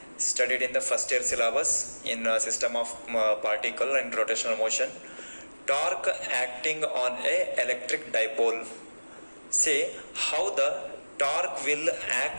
studied in the first year syllabus in system of particle and rotational motion. Torque acting on a electric dipole. See how the torque will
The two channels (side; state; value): both; inverted; correlation -1.00